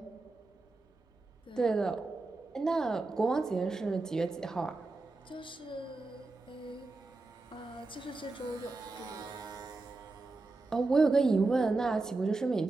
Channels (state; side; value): quieter; left; 3.4 dB